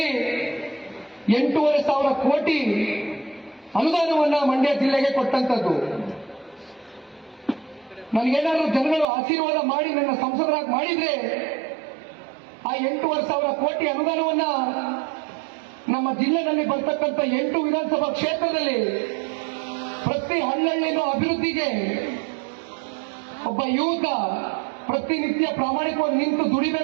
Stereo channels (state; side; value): drops out; left; at 9.1 s